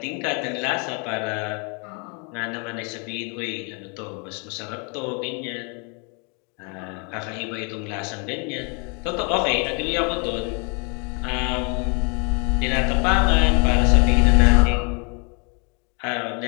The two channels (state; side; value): quieter; right; 34.9 dB